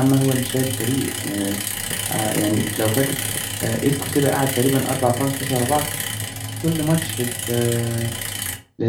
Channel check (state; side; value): identical; both; correlation 1.00